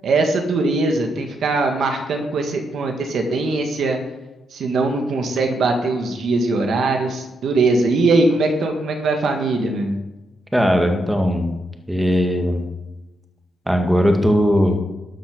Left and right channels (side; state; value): both; normal; correlation 0.81